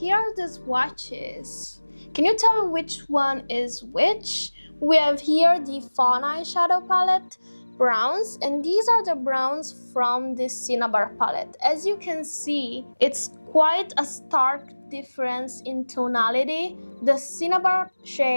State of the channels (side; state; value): both; inverted; correlation -1.00